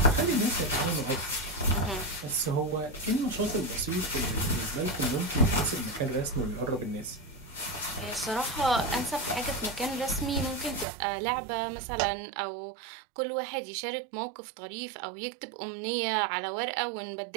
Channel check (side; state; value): left; drops out; at 10.9 s